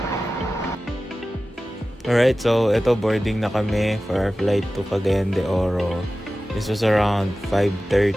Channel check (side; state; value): both; normal; correlation 0.95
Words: Alright, so ito boarding na kami for our flight to Cagayan de Oro. This was around